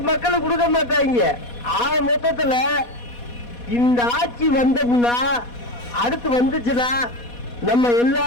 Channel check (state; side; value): late; right; 4.2 ms